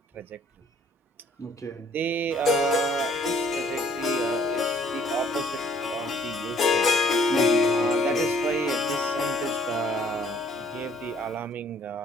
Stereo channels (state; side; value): normal; both; correlation 0.60